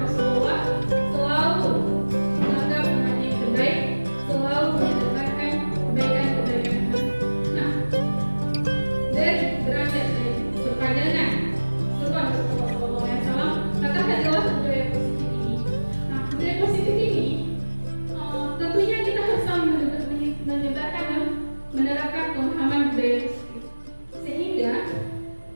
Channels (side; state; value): both; inverted; correlation -1.00